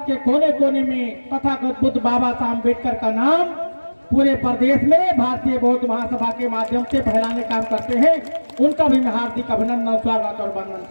के कोने कोने में तथागत बुद्ध बाबा साहब अम्बेडकर का नाम पूरे प्रदेश में भारतीय बौद्ध महासभा के माध्यम से फैलाने काम करते हैं। उनका भी मैं हार्दिक अभिनंदन, स्वागत और वंदन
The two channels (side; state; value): both; inverted; correlation -1.00